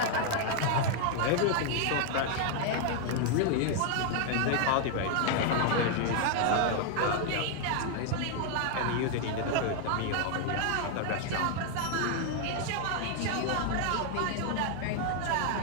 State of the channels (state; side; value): different; both; correlation 0.00